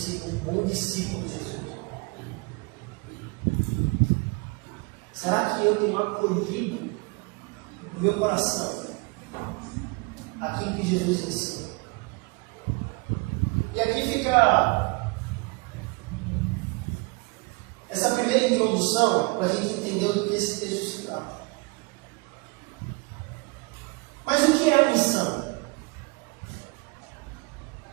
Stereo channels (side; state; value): left; quieter; 28.5 dB